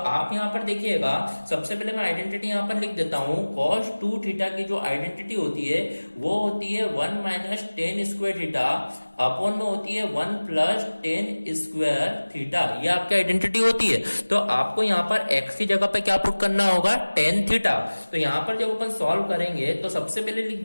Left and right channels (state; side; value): inverted; both; correlation -1.00